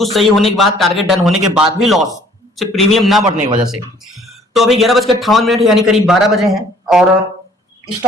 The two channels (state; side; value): normal; both; correlation 0.57